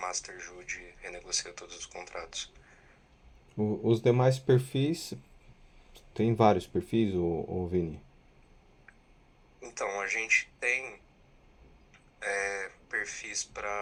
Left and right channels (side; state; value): both; identical; correlation 1.00